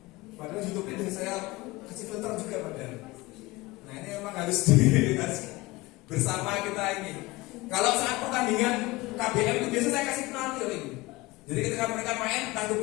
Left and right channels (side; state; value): right; quieter; 21.2 dB